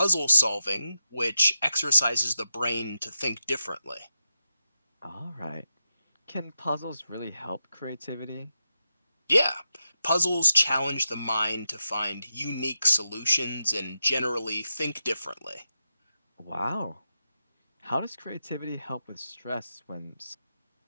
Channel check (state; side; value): inverted; both; correlation -0.87